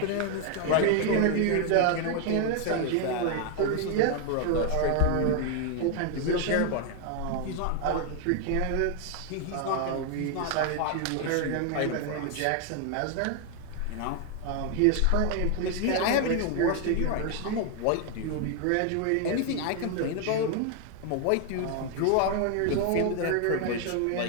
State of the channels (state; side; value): different; both; correlation 0.00